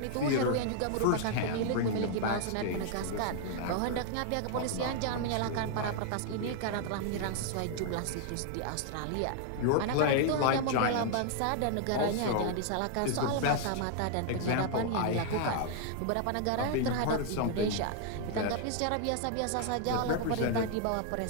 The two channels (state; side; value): different; both; correlation 0.00